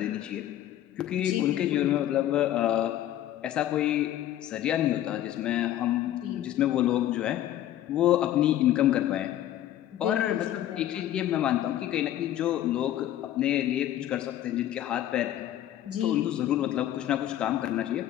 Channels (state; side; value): quieter; right; 12.5 dB